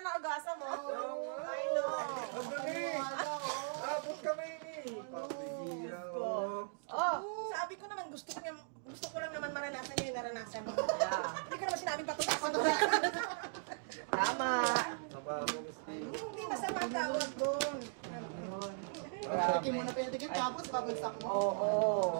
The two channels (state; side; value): silent; left; digital silence